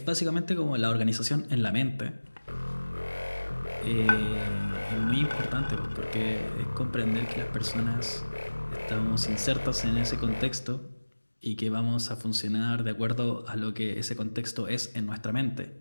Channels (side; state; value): both; inverted; correlation -1.00